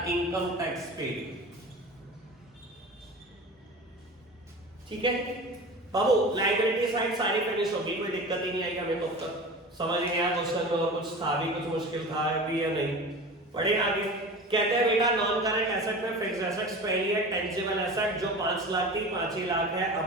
इनकम टैक्स पेड। ठीक है बाबू, लायबिलिटी साइड सारी फिनिश होगी, कोई दिक्कत ही नहीं आई हमें। तो तक समझ नहीं आया क्वेश्चन में, और कुछ था भी, कुछ मुश्किल था भी या नहीं? पढ़े आगे। कहते हैं बेटा नॉन करंट एसेट में फिक्स्ड एसेट्स पहली है टेंजिबल एसेट, जो 5 लाख थी 5 ही लाख है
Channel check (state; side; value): normal; both; correlation 0.34